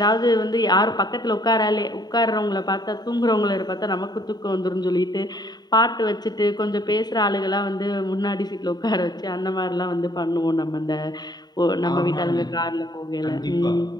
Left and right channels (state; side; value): late; right; 0.20 ms